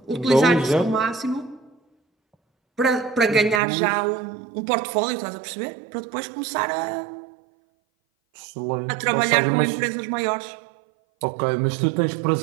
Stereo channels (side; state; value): left; drops out; at 3.6 s